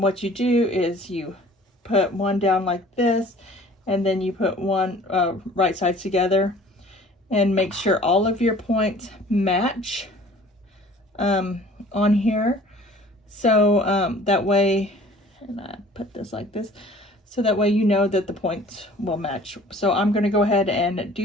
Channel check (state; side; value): normal; both; correlation 0.50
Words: you do is you put one down like this, and then you put one right sides together, and make sure all of your points match on here. So that way, and I put this like this, so that way you know that the points will match. So I'm gonna go ahead and